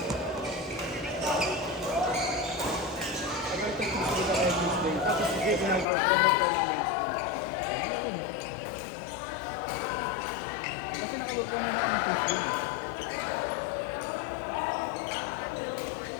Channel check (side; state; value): right; drops out; at 5.9 s